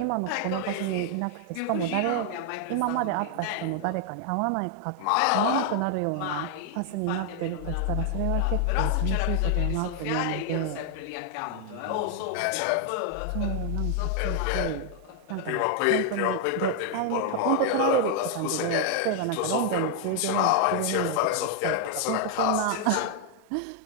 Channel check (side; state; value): both; different; correlation 0.00